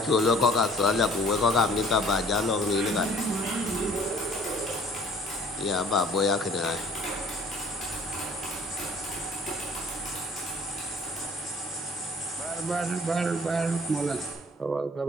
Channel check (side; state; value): both; normal; correlation 0.54